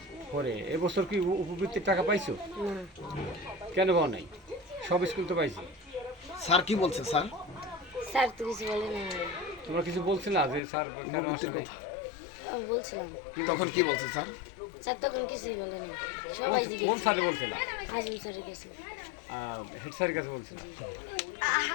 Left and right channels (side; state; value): right; drops out; at 10.6 s